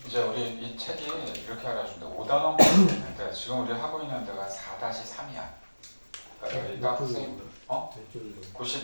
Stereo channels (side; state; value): both; inverted; correlation -1.00